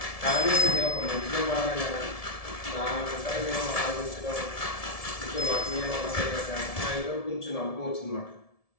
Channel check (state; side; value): late; right; 1.7 ms